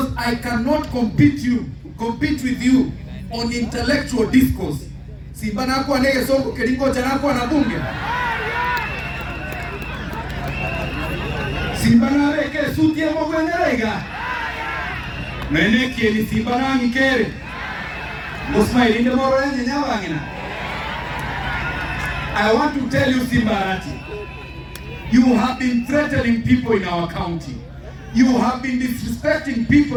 I cannot compete with you on intellectual discourse. Simba nakuwa nege songo kelingo chanakuwa na bunge. Simba na reke suti ya mwengerega. Meneki ni Simba na ngikere. Musma ilinde moro yenye nyawangina. I want to tell you, Simba Arati, you have been threatening people in our county. You have been disrespecting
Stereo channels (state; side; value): identical; both; correlation 1.00